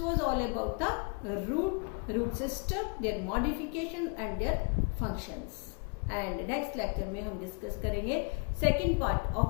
was all about the root system, their modification and their functions. And next lecture में हम डिस्कस करेंगे second part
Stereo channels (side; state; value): right; quieter; 35.0 dB